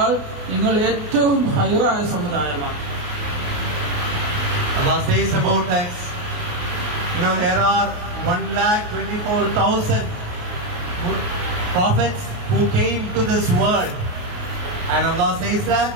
നിങ്ങൾ ഏറ്റവും ഖൈറായ സമുദായമാണ്. Allah says about us, there are 1,24,000 prophets who came to this world. And Allah says that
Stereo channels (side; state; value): left; late; 28 ms